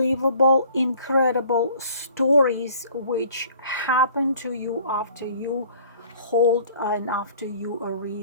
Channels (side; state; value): both; inverted; correlation -0.53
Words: incredible stories which happen to you after you hold and after you